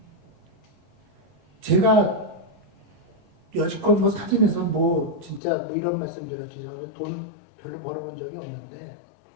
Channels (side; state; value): right; drops out; at 5.4 s